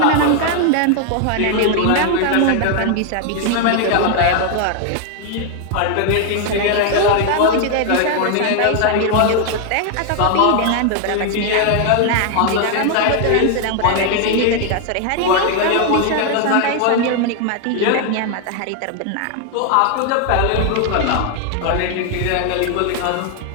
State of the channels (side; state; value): both; different; correlation 0.00